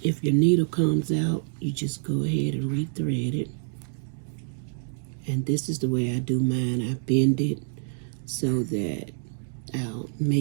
needle comes out, you just go ahead and rethread it. And this is the way I do mine. I bend it so that I'll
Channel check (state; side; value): silent; left; digital silence